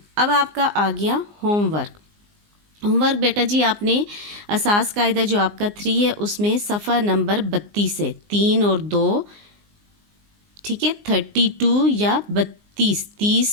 अब आपका आ गया होमवर्क। होमवर्क बेटा जी, आपने असास कायदा जो आपका 3 है उसमें सफ़ा नंबर 32 है, 3 और 2। ठीक है, 32 या 32,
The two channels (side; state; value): left; late; 19 ms